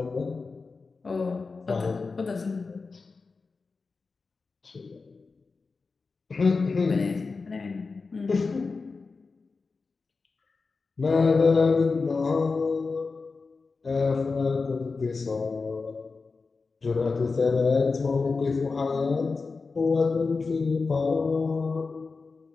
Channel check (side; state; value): right; quieter; 4.3 dB